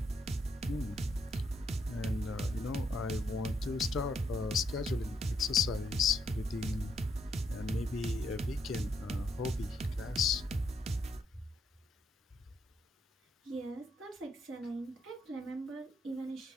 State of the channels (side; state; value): both; normal; correlation 0.75